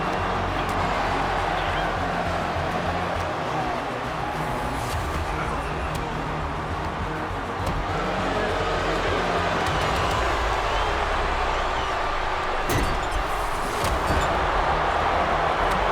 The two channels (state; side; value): identical; both; correlation 1.00